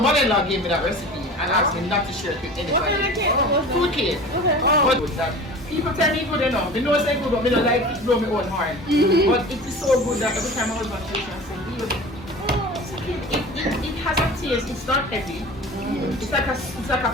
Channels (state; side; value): normal; both; correlation 0.37